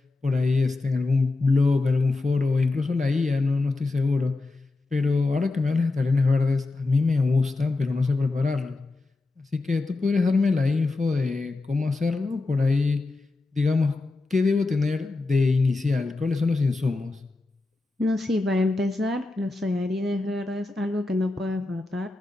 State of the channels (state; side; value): quieter; right; 3.3 dB